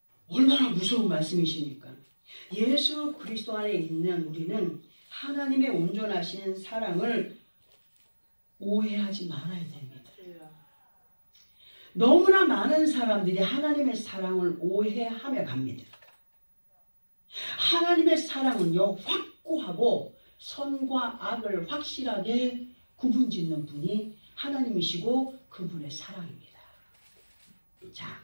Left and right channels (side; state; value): both; inverted; correlation -1.00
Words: 얼마나 무서운 말씀이십니까? 예수 그리스도 안에 있는 우리는 하나님의 온전하신 사랑을 오해하지 말아야 됩니다. 너무나 많은 사람들이 하나님의 사랑을 오해하며 갑니다. 하나님의 사랑은요, 확고하고 선과 악을 확실하게 구분짓는 분이 하나님이시고 그분의 사랑입니다. 자,